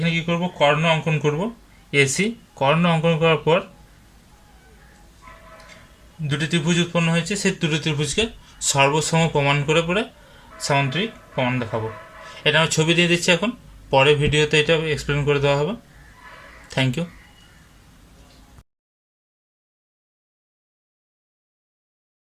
কি করব, কর্ণ অঙ্কন করব। AC কর্ণ অঙ্কন করার পর দুটি ত্রিভুজ উৎপন্ন হয়েছে, সেই দুটি ত্রিভুজকে সর্বসম প্রমাণ করে পরে সামান্তরিক প্রমাণ দেখাবো। এটা আমি ছবি দিয়ে দিচ্ছি এখন, পরে ভিডিওতে এটা এক্সপ্লেন করে দেওয়া হবে। Thank you.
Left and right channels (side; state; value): both; identical; correlation 1.00